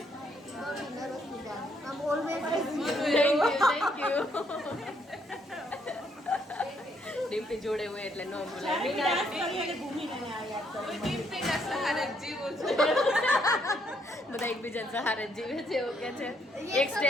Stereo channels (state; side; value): normal; both; correlation 0.72